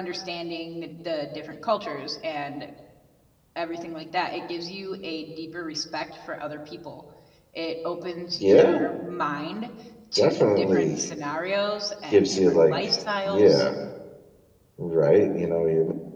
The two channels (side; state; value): both; identical; correlation 1.00